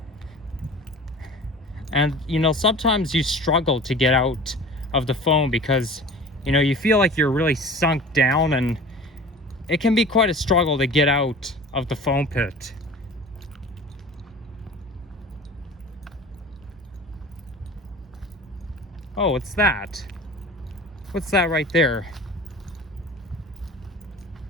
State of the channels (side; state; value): both; normal; correlation 0.40